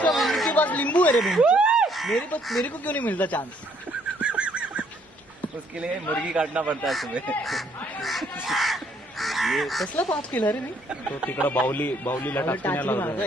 की बात नींबू है रे मेरे को क्यों नहीं मिलता चांस. उसके लिए मुर्गी काटना पड़ता है सुबह. कसला पास केला रे मी. तो तिकडं बाहुलीला टाचणी मारतो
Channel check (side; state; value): both; normal; correlation 0.66